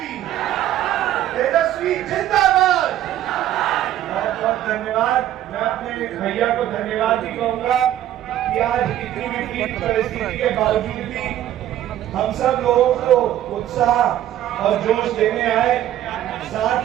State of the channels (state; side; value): quieter; left; 12.4 dB